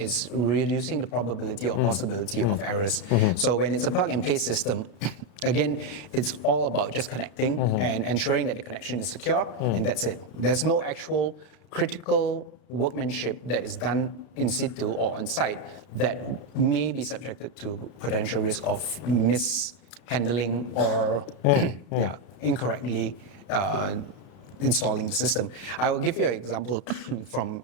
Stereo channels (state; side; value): late; right; 33 ms